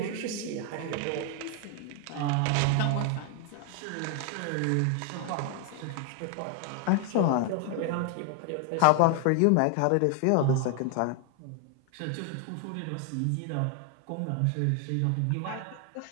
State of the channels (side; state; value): both; different; correlation 0.00